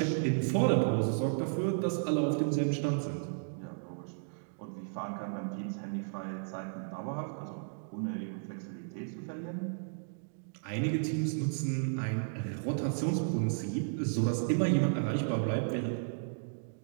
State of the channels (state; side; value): silent; left; digital silence